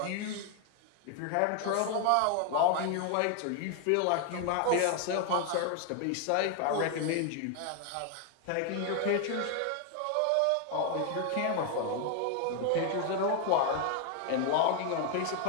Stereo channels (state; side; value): different; both; correlation 0.01